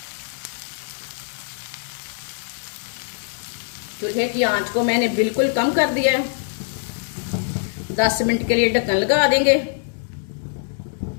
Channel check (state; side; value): silent; right; digital silence